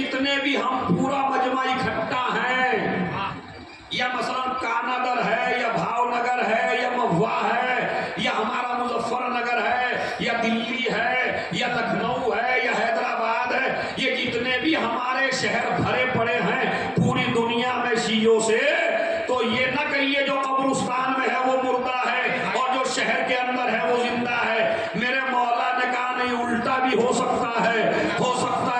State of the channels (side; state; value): both; identical; correlation 1.00